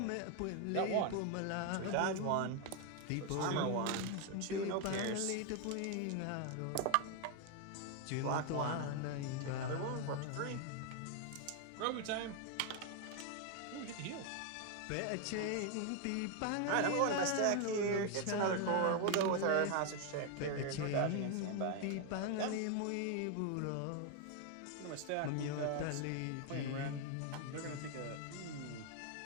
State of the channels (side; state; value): both; different; correlation 0.01